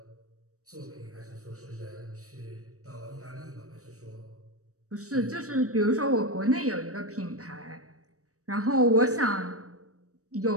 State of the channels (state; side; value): late; left; 0.65 ms